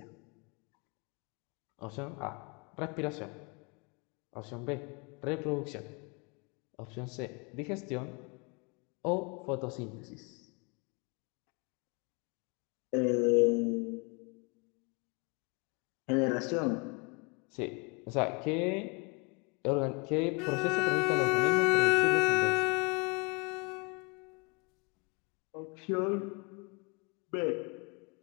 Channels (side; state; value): right; quieter; 31.2 dB